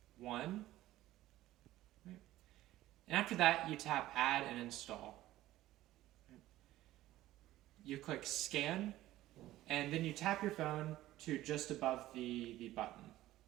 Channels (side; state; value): left; quieter; 15.3 dB